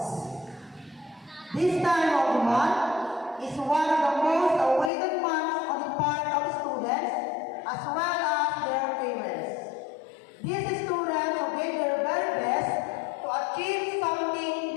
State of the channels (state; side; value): drops out; right; at 4.9 s